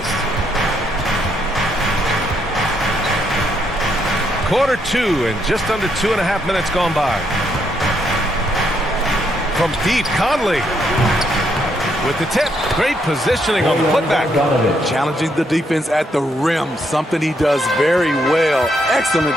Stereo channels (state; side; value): normal; both; correlation 0.75